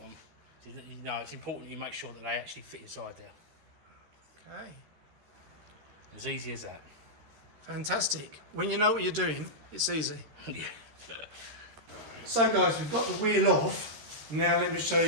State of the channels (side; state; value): left; late; 13 ms